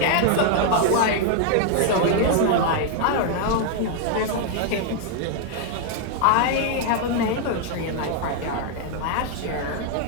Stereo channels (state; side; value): different; both; correlation 0.00